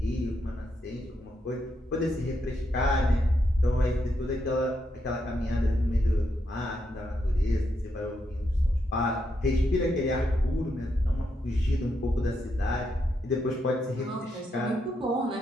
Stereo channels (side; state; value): both; normal; correlation 0.81